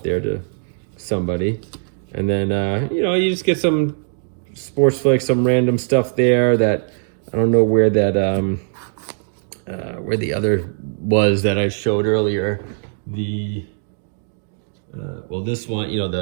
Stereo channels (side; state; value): left; silent; digital silence